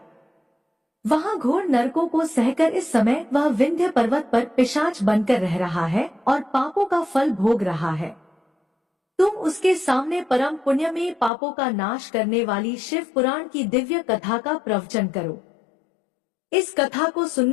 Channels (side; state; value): right; drops out; at 11.3 s